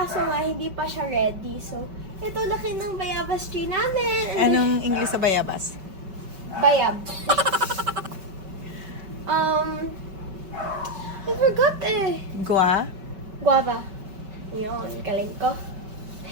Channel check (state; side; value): late; left; 5.2 ms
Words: nga hindi pa siya ready. So, ito laki ng bayabas tree namin. And Anong English sa bayabas? bayab. I forgot eh. Guava. Yun, galing ko.